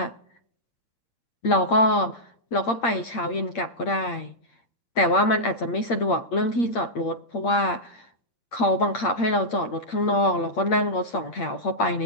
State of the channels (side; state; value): right; late; 8.6 ms